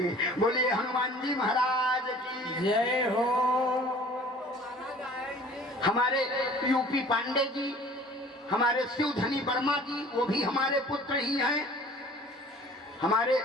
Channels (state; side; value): normal; both; correlation 0.48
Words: बोलिए हनुमान जी महाराज की जय हो। हमारे यूपी पांडे जी, हमारे शिवधनी वर्मा जी, वो भी हमारे पुत्र ही हैं। हमारे